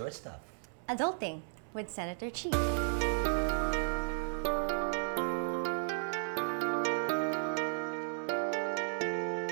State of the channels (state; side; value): silent; left; 55 dB below the other